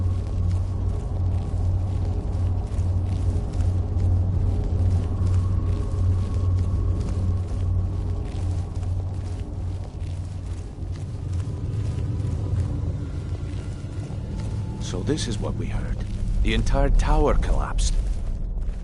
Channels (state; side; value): identical; both; correlation 1.00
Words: So this is what we heard. The entire tower collapsed.